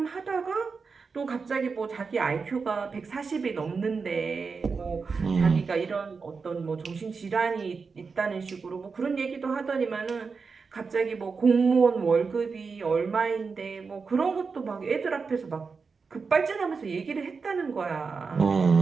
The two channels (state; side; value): quieter; left; 4.9 dB